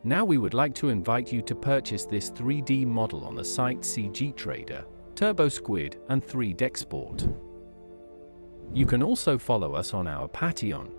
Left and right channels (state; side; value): inverted; both; correlation -1.00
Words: now we would like to invite you to purchase this 3D model on the site CG Trader, TurboSquid, and 3DExport. You can also follow us on our Patreon,